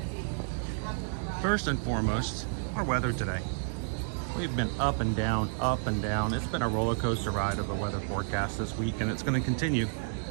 First and foremost, our weather today. We've been up and down, up and down. It's been a roller coaster ride of the weather forecast this week, and it's going to continue.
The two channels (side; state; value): left; silent; digital silence